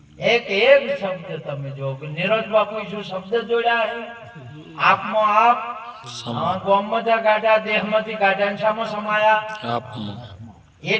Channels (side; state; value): both; identical; correlation 1.00